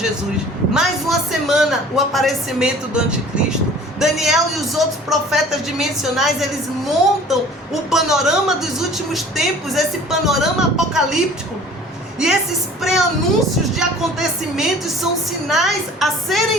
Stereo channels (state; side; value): normal; both; correlation 0.47